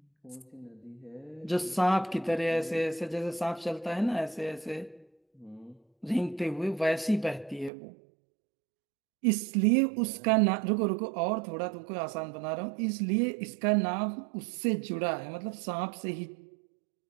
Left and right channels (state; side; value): drops out; left; at 7.7 s